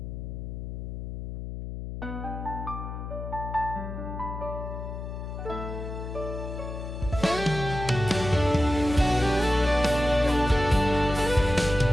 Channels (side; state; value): left; noise; hum, 7 dB below the sound